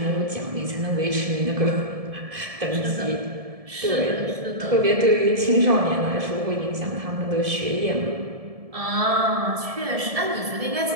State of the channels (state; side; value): late; left; 1.7 ms